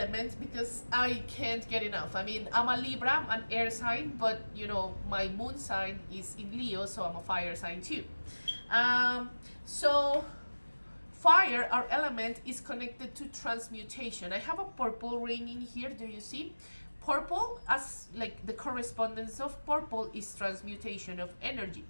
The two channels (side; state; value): both; inverted; correlation -1.00